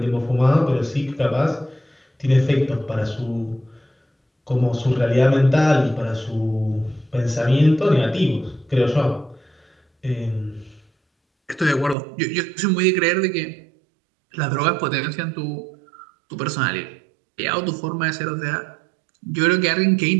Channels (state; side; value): drops out; left; at 12.0 s